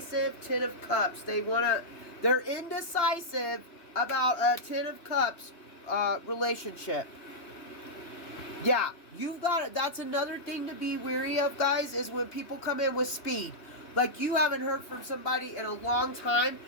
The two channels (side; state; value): right; late; 3.1 ms